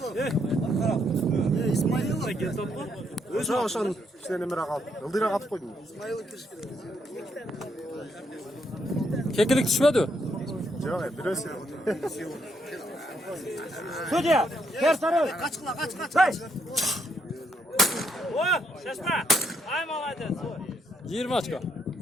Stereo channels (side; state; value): both; normal; correlation 0.75